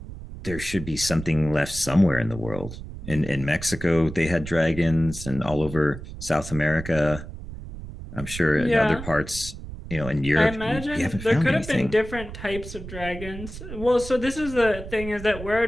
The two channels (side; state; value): right; noise; rumble, 11 dB below the sound